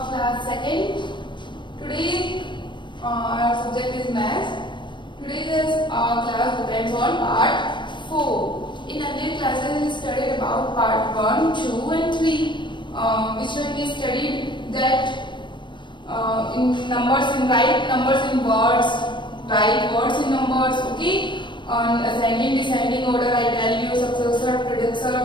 class 2nd. Today our subject is maths. Today's class depends on part 4. In earlier classes we studied about part 1, 2 and 3, which when we studied that in numbers, in write numbers in words, write words in numbers, okay? On ascending, descending order, I tell you successor, predecessor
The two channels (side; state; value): right; late; 0.23 ms